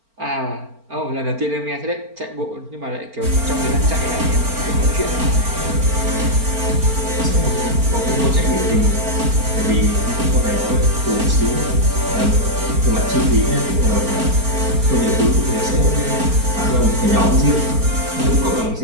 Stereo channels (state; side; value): late; left; 4.4 ms